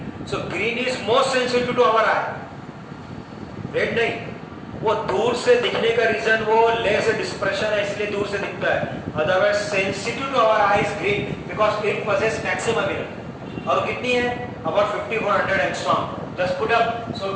So green is most sensitive to our eye, red नहीं। वो दूर से दिखने का रीजन वो लेस डिस्पर्शन है, इसलिए दूर से दिखता है। Otherwise sensitive to our eye is green because it possess maximum energy. और कितनी है? About 5400 angstrom. Just put up, so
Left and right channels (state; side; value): identical; both; correlation 1.00